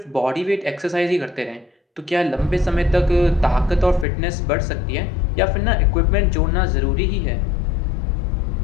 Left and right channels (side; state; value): right; drops out; at 4.0 s